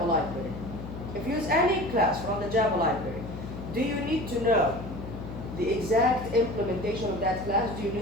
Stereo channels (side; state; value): left; noise; hum, 9 dB below the sound